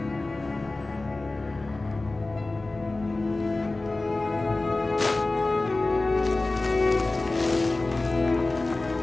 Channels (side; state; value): right; quieter; 3.1 dB